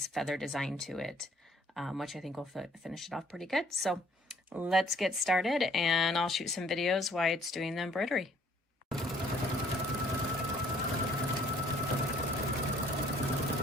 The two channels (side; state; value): both; normal; correlation 0.60